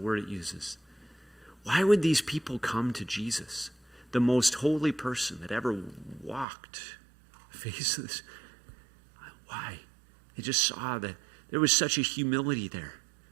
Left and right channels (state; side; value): drops out; left; at 6.5 s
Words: it uses. Why would these people come to Jesus, the most holy person that ever walked the face of this? Why? They just saw that there was such a humility there.